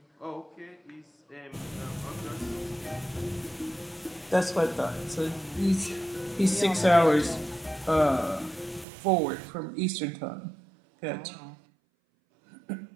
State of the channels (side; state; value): left; drops out; at 8.8 s